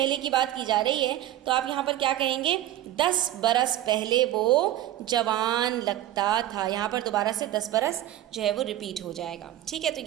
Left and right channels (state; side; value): quieter; left; 13.3 dB